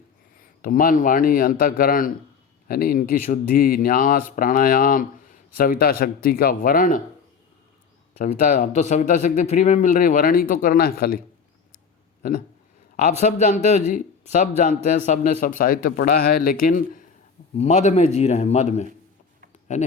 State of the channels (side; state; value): right; quieter; 6.1 dB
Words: तो मन, वाणी, अंतःकरण, है नहीं, इनकी शुद्धि, न्यास, प्राणायाम, सविता शक्ति का वर्ण, सविता, अब तो सविता शक्ति फ्री में मिल रही, वर्ण ही तो करना है खाली, है ना। आप सब जानते हो जी, सब जानते हैं, सब ने सब साहित्य पढ़ा है, लेकिन मद में जी रहे हैं, मद में, है